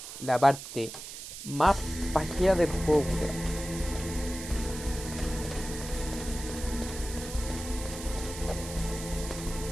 la parte más pajera del juego, weón.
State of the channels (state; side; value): noise; right; hiss, 10 dB below the sound